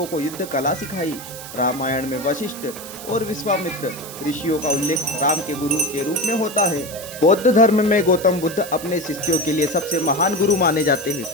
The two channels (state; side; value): noise; right; hiss, 13 dB below the sound